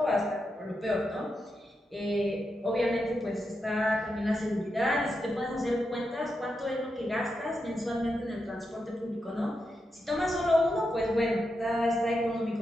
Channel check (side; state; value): both; normal; correlation 0.86